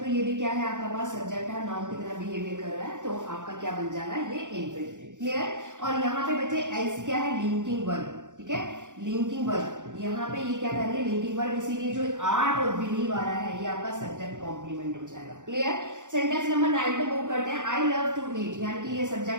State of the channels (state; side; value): late; left; 0.86 ms